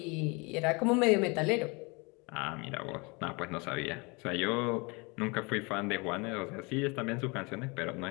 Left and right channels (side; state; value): right; quieter; 28.6 dB